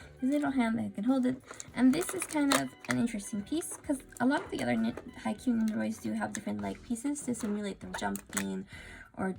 his little hand that can hold it, and this is kind of an interesting piece because a lot of the other Haikyuu Nendoroids do have different like pieces to simulate them jumping or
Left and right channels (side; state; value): both; identical; correlation 1.00